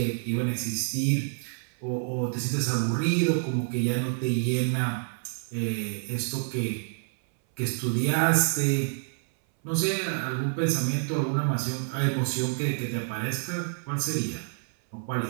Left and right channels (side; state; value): left; silent; 59 dB below the other